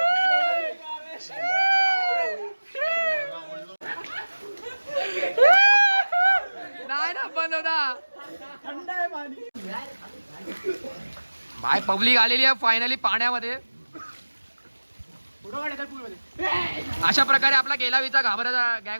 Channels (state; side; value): inverted; both; correlation -1.00